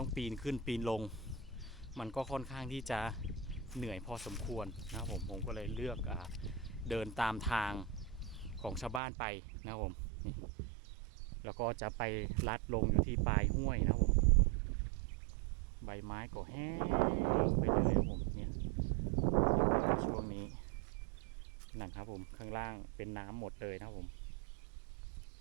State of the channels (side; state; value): left; drops out; at 9.0 s